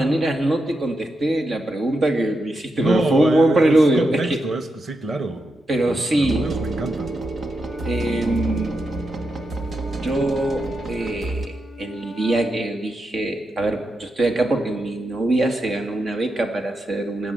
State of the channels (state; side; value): normal; both; correlation 0.86